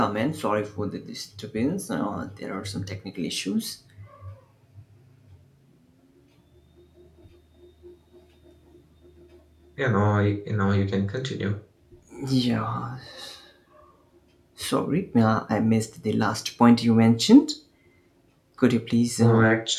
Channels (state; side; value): identical; both; correlation 1.00